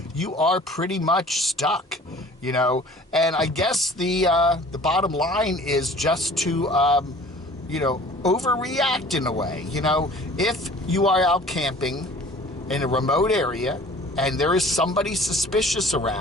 you are pretty much stuck, you know. And I guess the bottom line is just to, you know, overreact in a way. You know, if you are out camping in a remote area and there is somebody suspicious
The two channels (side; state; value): both; normal; correlation 0.48